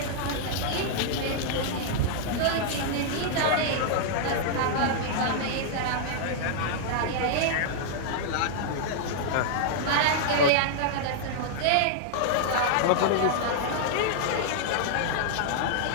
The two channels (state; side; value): different; both; correlation -0.01